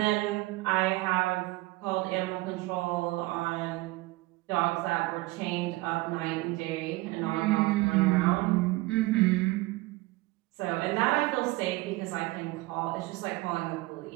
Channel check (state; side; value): quieter; left; 20.8 dB